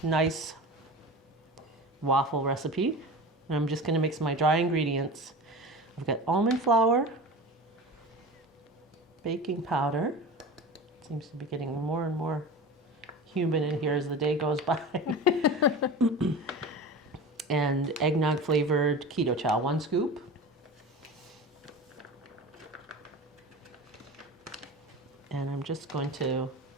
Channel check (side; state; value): both; normal; correlation 0.32